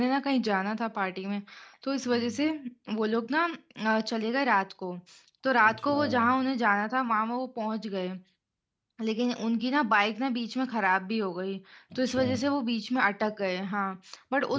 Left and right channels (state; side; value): identical; both; correlation 1.00